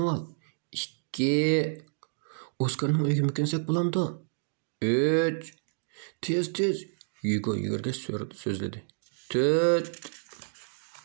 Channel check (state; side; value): silent; left; digital silence